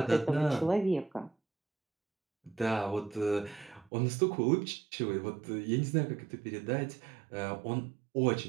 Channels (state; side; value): drops out; left; at 3.9 s